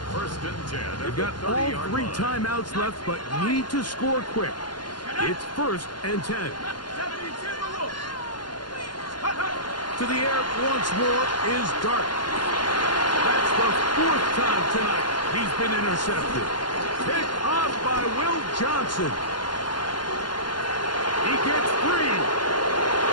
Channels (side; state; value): right; late; 0.71 ms